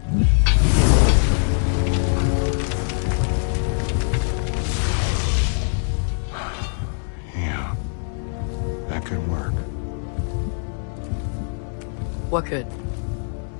Yeah, that could work. What could?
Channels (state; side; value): silent; right; 58 dB below the other